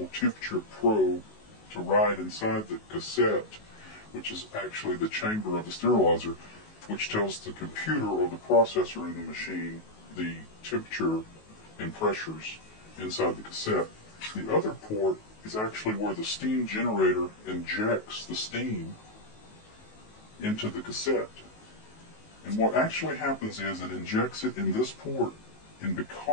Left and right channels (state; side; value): late; right; 19 ms